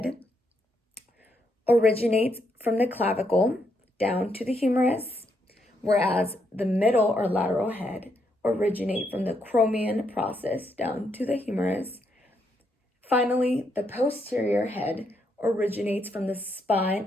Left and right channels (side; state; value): both; normal; correlation 0.77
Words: originates from the clavicle down to the humerus, whereas the middle or lateral head originate from the Cromian process down to the humerus. Finally, the posterior head originates from the spine